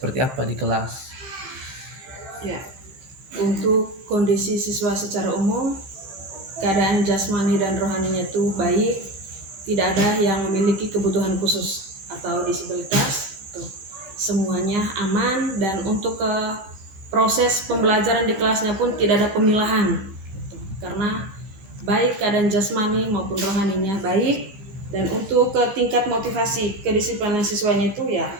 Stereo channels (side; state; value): left; late; 15 ms